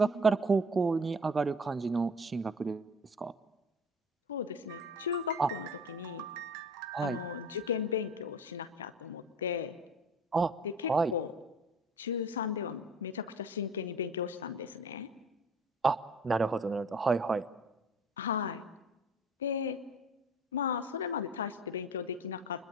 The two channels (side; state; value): both; normal; correlation 0.44